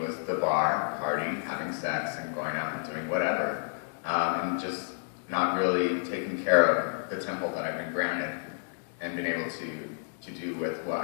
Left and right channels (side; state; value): right; silent; digital silence